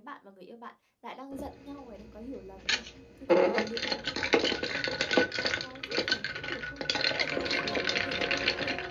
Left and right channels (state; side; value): identical; both; correlation 1.00